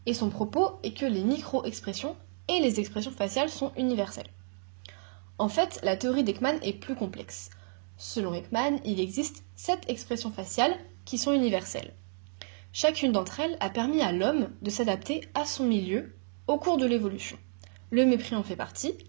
Et son propos est que les micro-expressions et les expressions faciales sont universelles. En fait, la théorie d'Ekman est plus complexe. Selon Ekman, il existe 7 expressions faciales qui sont universelles. Chacune d'entre elles a permis à l'homme de s'adapter à son milieu au cours de l'évolution. Le mépris en fait partie,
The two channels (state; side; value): silent; left; digital silence